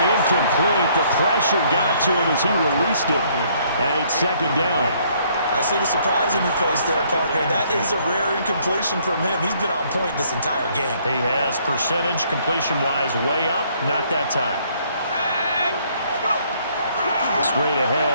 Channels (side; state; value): both; inverted; correlation -0.65